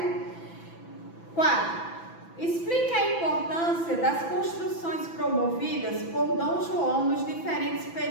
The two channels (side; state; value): right; late; 6.0 ms